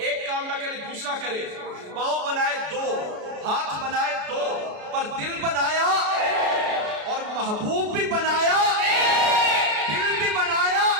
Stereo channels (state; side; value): late; left; 33 ms